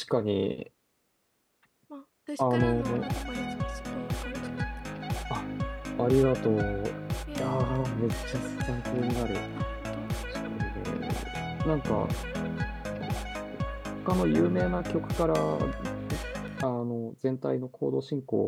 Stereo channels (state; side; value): identical; both; correlation 1.00